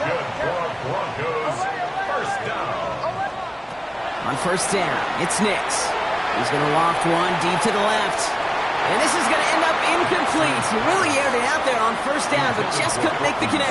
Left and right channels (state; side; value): identical; both; correlation 1.00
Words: good for our Broncos. First down. On first down, it's Nix. He's going to loft one deep to the left. And this is going to end up incomplete. He really aired it out there on first down, but just couldn't make the